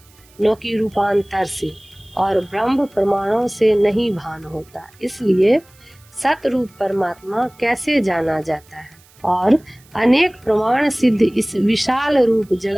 न कि रूपांतर से, और ब्रह्म प्रमाणों से नहीं भान होता। इसलिए सत रूप परमात्मा कैसे जाना जाता है और अनेक प्रमाण सिद्ध इस विशाल रूप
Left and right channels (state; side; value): noise; right; hiss, 29 dB below the sound